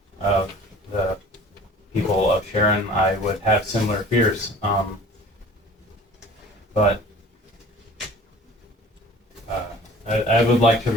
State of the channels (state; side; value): normal; both; correlation 0.46